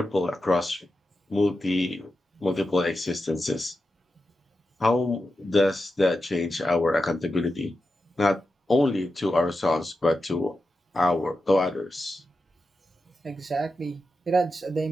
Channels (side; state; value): both; normal; correlation 0.90